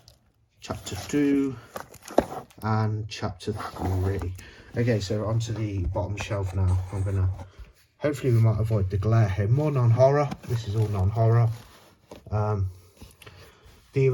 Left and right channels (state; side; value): identical; both; correlation 1.00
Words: Chapter 2, and Chapter 3. Okay, so onto the bottom shelf now. I'm gonna, hopefully we might avoid the glare here. More non-horror. This is all non-horror. The